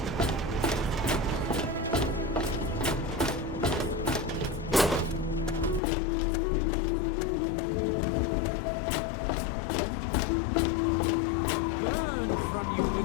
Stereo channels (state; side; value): drops out; right; at 5.8 s